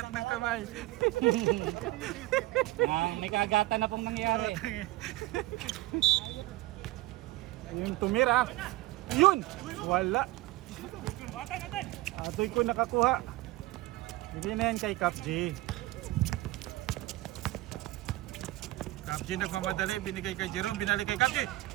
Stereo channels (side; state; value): left; quieter; 18.5 dB